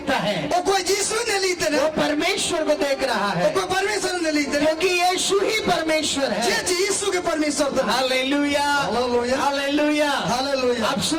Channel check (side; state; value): both; identical; correlation 1.00